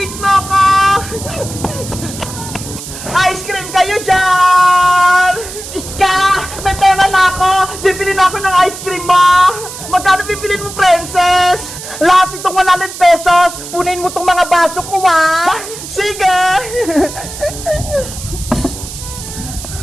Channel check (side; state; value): right; noise; hiss, 11 dB below the sound